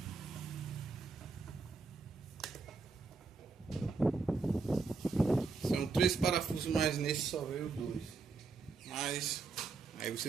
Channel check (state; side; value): quieter; left; 4.5 dB